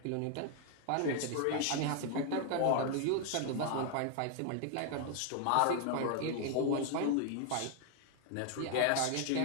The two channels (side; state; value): both; different; correlation 0.00